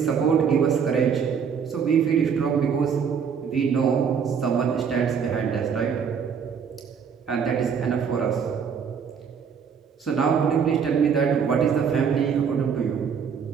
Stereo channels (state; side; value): quieter; left; 6.8 dB